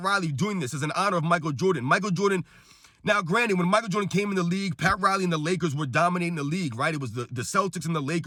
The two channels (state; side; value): identical; both; correlation 1.00